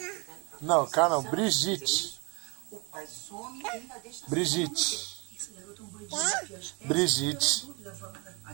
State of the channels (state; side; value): quieter; left; 30.4 dB